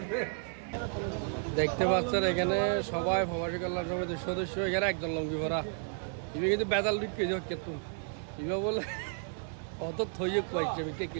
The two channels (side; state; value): left; silent; digital silence